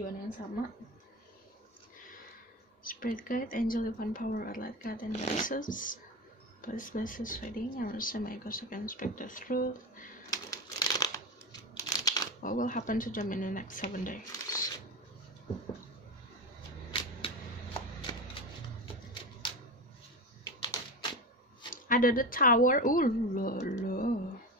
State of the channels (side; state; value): both; normal; correlation 0.23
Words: yang sama. Spirit guide, angel, divine power, light guide, and goddesses, please bless this reading. I will say my ghost can speak the truth. What will happen to them in the next 7 days? Ada the tower,